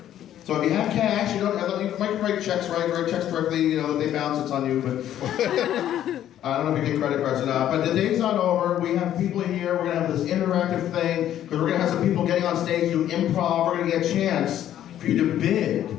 So if you have cash, you don't have, you might write checks, right? Write checks directly, you know, they bounce, it's on you, but I don't know if you get credit cards or not. But the day's not over. We have people here. We're going to have this interactive thing, because we're going to have some people getting on stage, do improv. We're going to get a chance for you to bid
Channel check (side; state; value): right; quieter; 11.5 dB